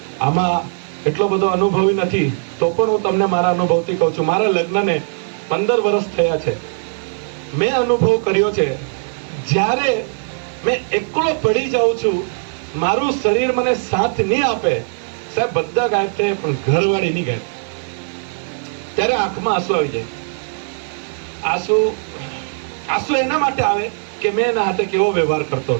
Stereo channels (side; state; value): left; silent; 63 dB below the other